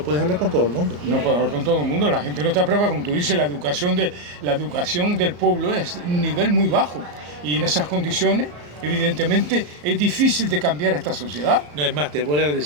puedes hablar con todo el mundo. No puedes hablar con todo el mundo, la gente no está preparada, como tú dices, la educación del pueblo es un nivel muy bajo. Y en esas condiciones, evidentemente, es difícil de cambiar esta sociedad. No, es más, te voy a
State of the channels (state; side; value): late; left; 34 ms